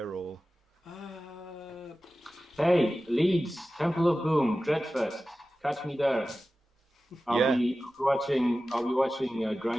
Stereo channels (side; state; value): both; normal; correlation 0.95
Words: or? Hey, Leeds, Temple of Boom, Dreadfest. Catch me there. I'll be watching